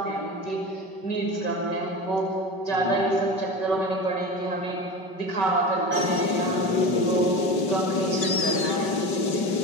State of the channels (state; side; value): late; right; 5.3 ms